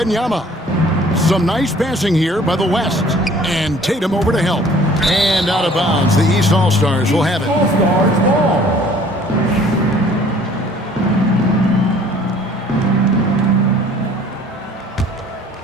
Some nice passing here by the West. And Tatum over to help. And out of bounds, the East All-Stars will have it.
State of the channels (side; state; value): both; normal; correlation 0.54